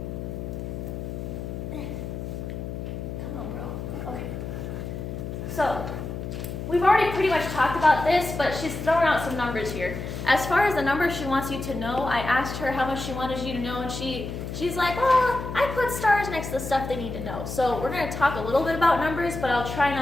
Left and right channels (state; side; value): noise; left; hum, 6 dB below the sound